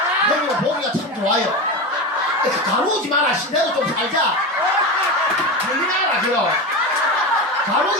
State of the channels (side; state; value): both; normal; correlation 0.21